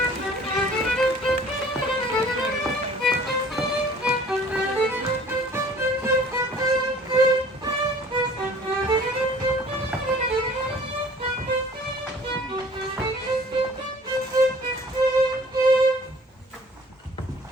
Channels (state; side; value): normal; both; correlation 0.51